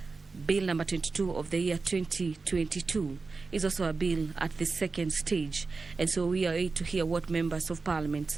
Bill number 22 of the year 2022, is also a bill at the second stage. And so we are able to hear what members of Parliament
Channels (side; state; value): left; quieter; 4.1 dB